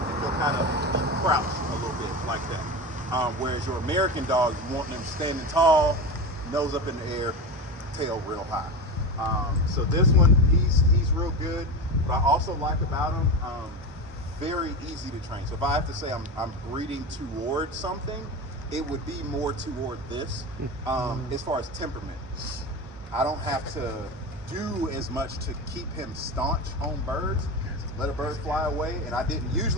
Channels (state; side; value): normal; both; correlation 0.23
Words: he'll kind of crouch a little bit like that. Whereas your American dogs, you want them standing tall, nose up in the air, tail real high. So this one, he's real good. What I also like about him, very easy to train. So if I have to say I'm breeding towards something, it would be more toward this. As far as temperament, I don't have to do as much to keep him staunch on birds. Let a bird fly away, and I didn't.